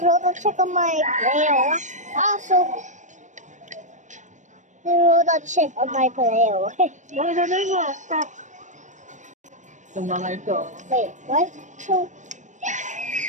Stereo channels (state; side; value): late; left; 0.35 ms